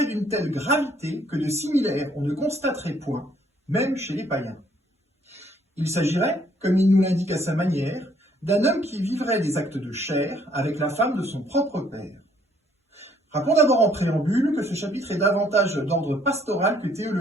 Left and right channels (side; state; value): both; normal; correlation 0.65